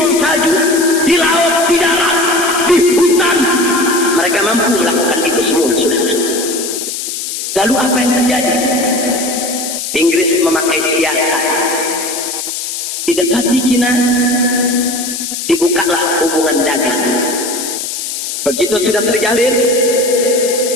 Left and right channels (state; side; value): noise; left; hiss, 5 dB below the sound